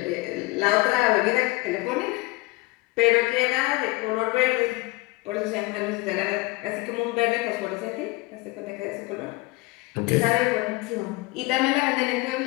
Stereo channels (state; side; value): quieter; right; 23.0 dB